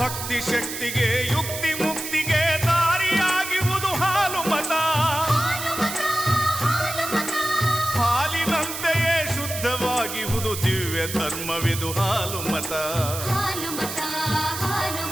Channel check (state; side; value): noise; right; hiss, 7 dB below the sound